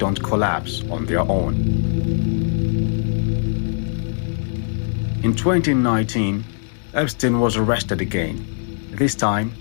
collapse on their own. In 2019, Epstein was arrested again. This time,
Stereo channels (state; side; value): silent; right; 64 dB below the other